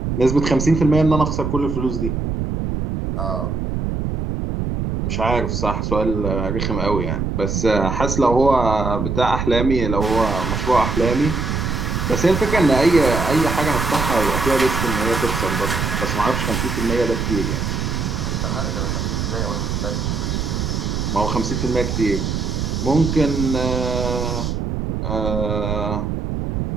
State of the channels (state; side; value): noise; right; rumble, 2 dB below the sound